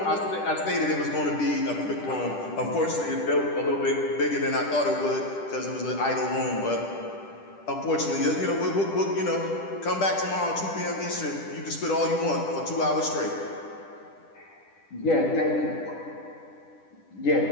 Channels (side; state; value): right; late; 10 ms